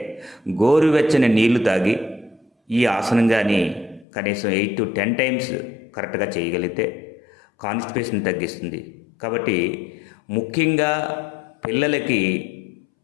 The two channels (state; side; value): drops out; right; at 4.0 s